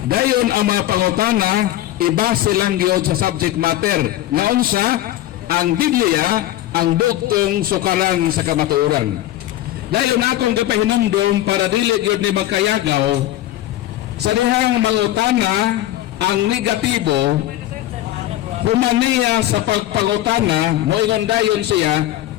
Dayon ang mga pangutana ibase lang gyud sa subject matter nga unsa ang Biblia ang bugtong sukaran sa kamatuoran. Dayon akong gapahinumdom para dili gyud ni magkayagaw sa dihang mangutana ang negatibo humaniya sa pagpangutana moingon dayon siya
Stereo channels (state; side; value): quieter; right; 14.3 dB